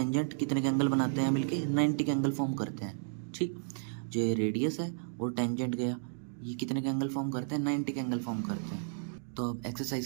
कितने के एंगल बनाते हैं मिलके, 90 के एंगल फॉर्म करते हैं, ठीक। जो ये रेडियस है और टेंजेंट गया, ये कितने के एंगल फॉर्म करते हैं, 90 के एंगल फॉर्म करते हैं। तो अब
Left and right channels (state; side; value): silent; left; digital silence